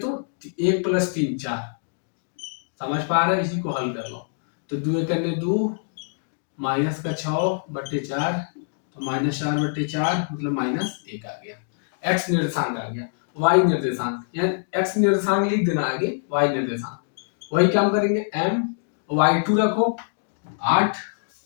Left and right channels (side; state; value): right; silent; digital silence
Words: 1 प्लस 3 4। समझ पा रहे हो, इसी को हल कर लो। तो 2 करने 2 माइनस का 6 बटे 4, तो -4 बटे 4 मतलब -1 आ गया। X निर्देशांक आ गया। Y निर्देशांक, यानी X निर्देशांक लिख देना आगे, Y निर्देशांक वही काम करेंगे, M Y2 रखो 8